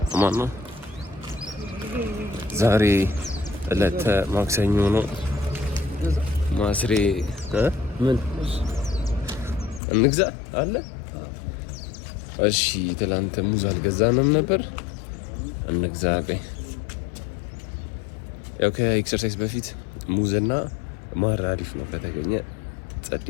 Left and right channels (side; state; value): right; drops out; at 9.8 s